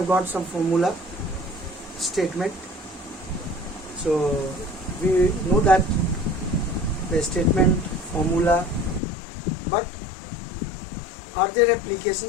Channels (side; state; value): right; drops out; at 9.0 s